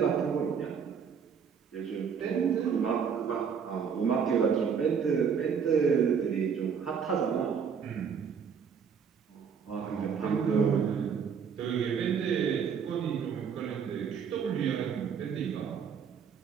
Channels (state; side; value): quieter; left; 6.8 dB